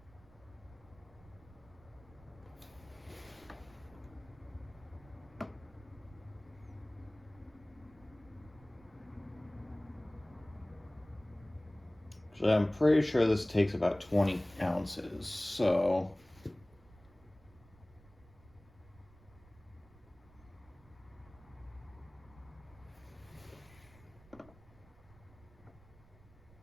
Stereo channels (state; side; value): noise; right; rumble, 24 dB below the sound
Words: So I'm pretty sure this takes about 20 ounces, so